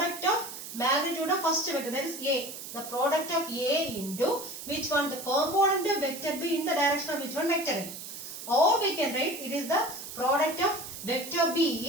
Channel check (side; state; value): right; noise; hiss, 10 dB below the sound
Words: of magnitude of first vector, that is A. The product of A into which one? The component of vector B in the direction of which one? Vector A. Or we can write it is the product of vector